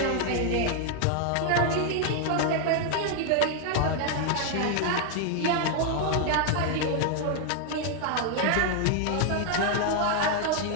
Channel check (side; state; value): both; different; correlation 0.00